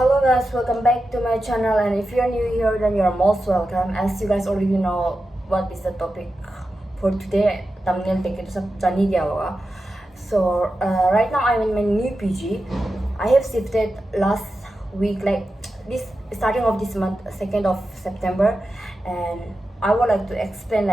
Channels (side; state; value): both; normal; correlation 0.91